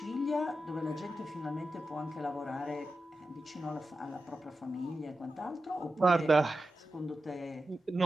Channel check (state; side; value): normal; both; correlation 0.91